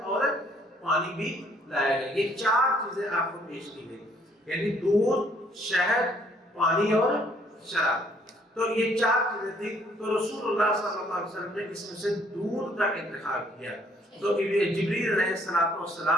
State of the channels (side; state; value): both; normal; correlation 0.63